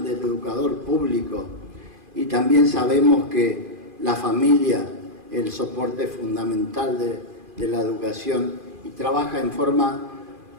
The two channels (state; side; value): late; left; 2.5 ms